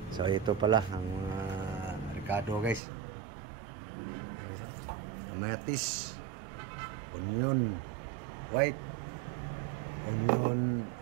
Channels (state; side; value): drops out; left; at 2.8 s